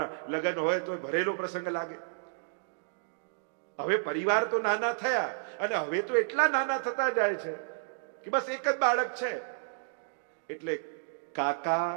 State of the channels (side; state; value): left; silent; digital silence